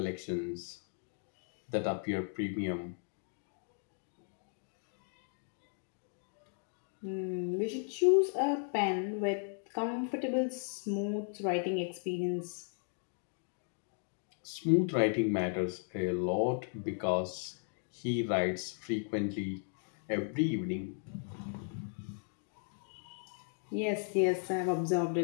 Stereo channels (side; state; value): right; silent; 54 dB below the other